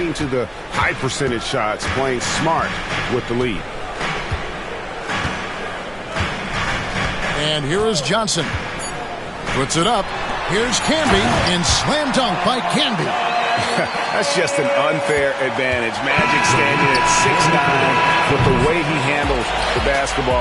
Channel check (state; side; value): identical; both; correlation 1.00